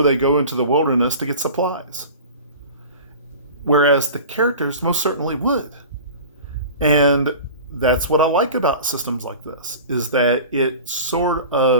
they go into the wilderness to get supplies. Whereas the characters most certainly would. And that's what I like about systems like this, is that it sort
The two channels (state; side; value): inverted; both; correlation -0.38